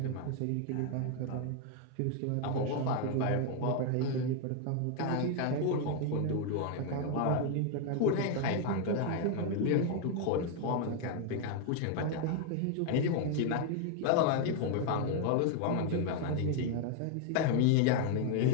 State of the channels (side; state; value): both; different; correlation 0.00